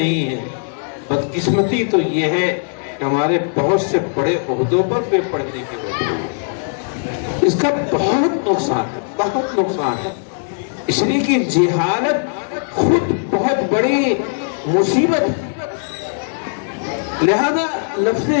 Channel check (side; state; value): right; silent; 65 dB below the other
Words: ہیں، بدقسمتی تو یہ ہے کہ ہمارے بہت سے بڑے عہدوں پر بے پڑھنے کی وجہ ہے۔ اس کا بہت نقصان ہے، بہت نقصان ہے، اس لیے کہ جہالت خود بہت بڑی مصیبت ہے۔ لہذا لفظ